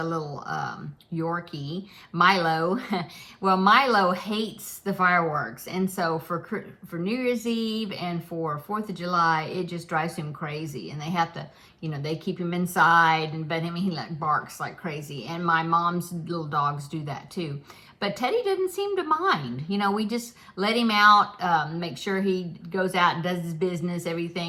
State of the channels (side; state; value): both; identical; correlation 1.00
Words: little Yorkie, Milo. Well, Milo hates the fireworks, and so for New Year's Eve and for 4th of July, it just drives him crazy. And they have to, they keep him inside, but he like barks like crazy. And my mom's little dogs do that too. But Teddy didn't seem to mind. We just let him out, make sure he goes out and does his business,